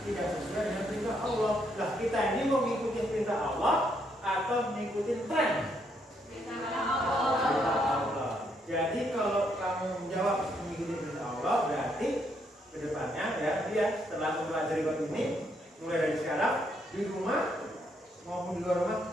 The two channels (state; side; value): normal; both; correlation 0.74